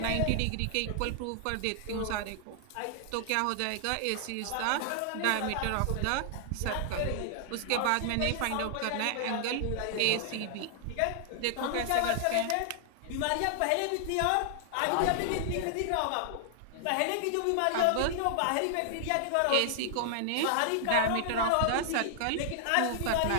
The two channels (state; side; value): different; both; correlation -0.01